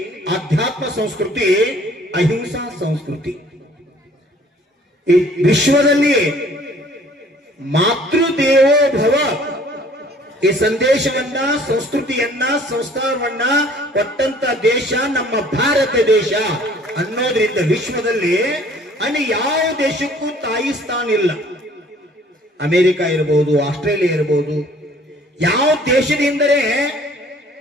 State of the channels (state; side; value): normal; both; correlation 0.55